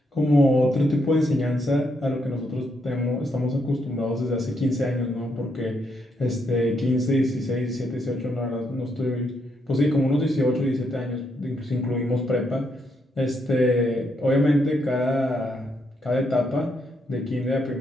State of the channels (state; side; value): normal; both; correlation 0.77